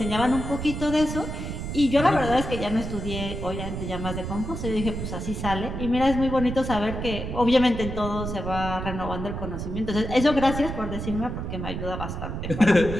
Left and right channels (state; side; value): noise; right; rumble, 5 dB below the sound